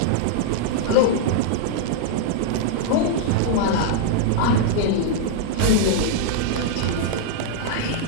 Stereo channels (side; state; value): both; different; correlation -0.01